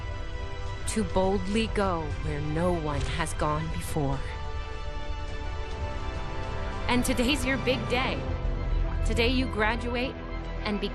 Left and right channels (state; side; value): identical; both; correlation 1.00